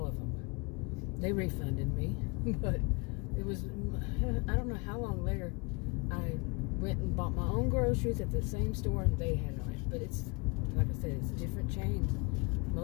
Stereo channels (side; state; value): right; quieter; 28.6 dB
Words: of them. They refunded me, but it was, I don't know how long later, I went and bought my own groceries at the same store, and they had it on it. But it's, like I said, it's different chains.